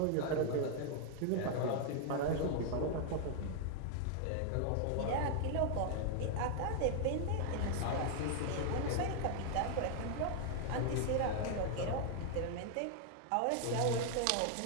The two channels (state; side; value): different; both; correlation 0.00